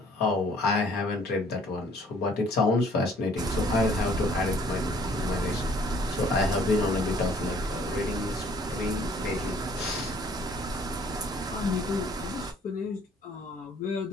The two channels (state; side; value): normal; both; correlation 0.58